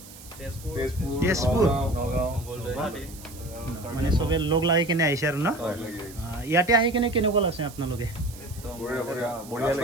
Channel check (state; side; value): noise; right; hiss, 18 dB below the sound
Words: তেজপুৰ মানে চবে লগ লাগি কিনে আহিছে আৰু না ইয়াতে আহি কিনে কেনেকুৱা লাগছে আপোনালোকে